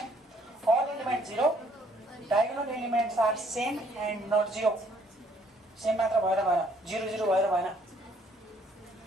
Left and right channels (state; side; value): normal; both; correlation 0.64